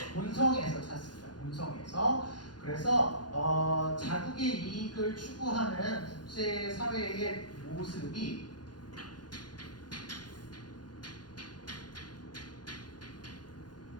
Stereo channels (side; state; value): right; late; 0.70 ms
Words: 본성에서 찾습니다. 본성에서. 그래서 자국의 이익을 추구하는 국제사회의 모습이